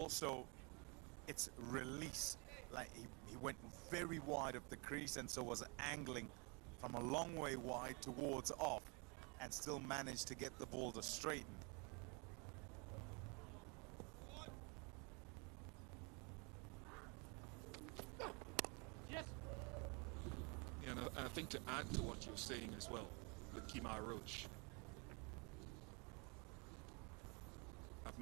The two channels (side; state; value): left; quieter; 32.3 dB